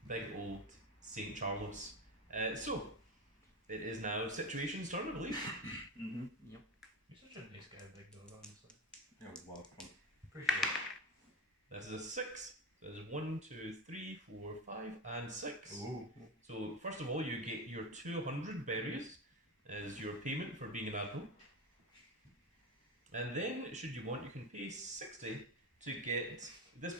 big old St. Charles. So, it is now Situation's turn, I believe. Mm-hmm. Yep. You're such a nice guy, big dog, honestly. You're welcome. Appreciate it. This is a 6. So there's 1, 2, 3, 4, 5, and 6. Ooh. So, first of all, you get your 200 berries as your payment for being an admiral. And then, should you want, you can pay 60 to get this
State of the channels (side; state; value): both; normal; correlation 0.22